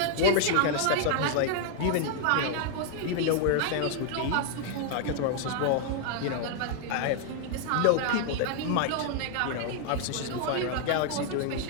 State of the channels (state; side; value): different; both; correlation 0.00